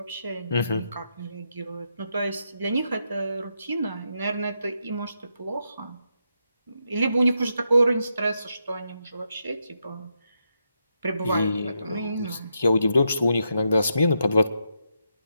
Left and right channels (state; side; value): inverted; both; correlation -0.82